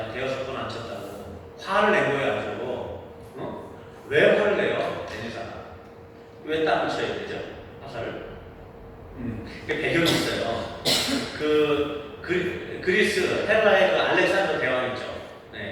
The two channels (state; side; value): identical; both; correlation 1.00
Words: 5번 안 쳤다고. 화를 낸 거예요, 아주. 왜 화를 내요, 엘리사가? 왜 땅을 쳐야 되죠? 화살을? 그 배경이 있어요. 그리스 헤라의 그 알렉산더 대왕 있죠.